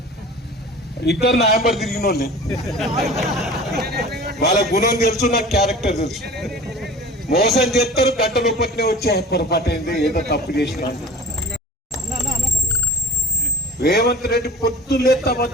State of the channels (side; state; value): both; normal; correlation 0.39